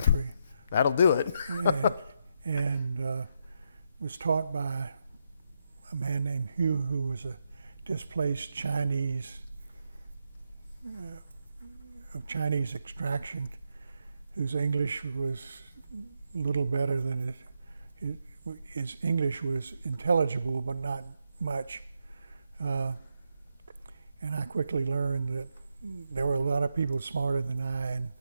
That'll do it. and was taught by a man named Hugh, who was a displaced Chinese, of Chinese extraction, whose English was a little better than his English was intelligible, but not much. And I quickly learned that there were a lot of people smarter than I in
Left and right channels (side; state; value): both; inverted; correlation -0.82